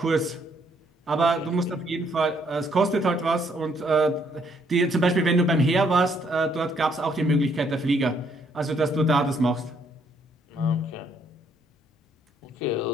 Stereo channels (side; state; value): both; normal; correlation 0.69